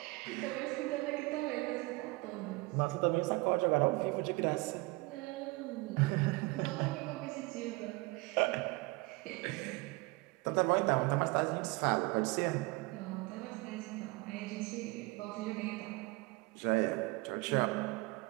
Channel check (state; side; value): quieter; left; 24.3 dB